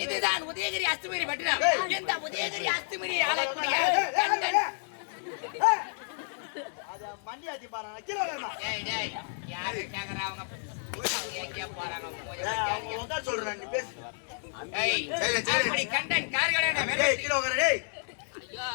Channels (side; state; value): right; silent; 58 dB below the other